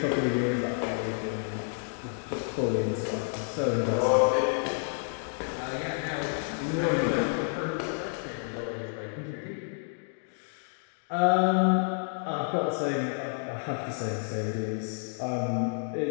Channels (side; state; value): right; silent; 58 dB below the other